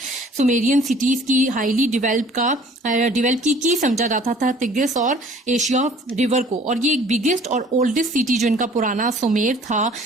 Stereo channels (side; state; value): both; normal; correlation 0.52